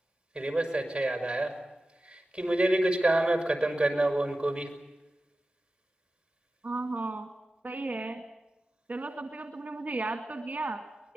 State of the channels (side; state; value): both; normal; correlation 0.94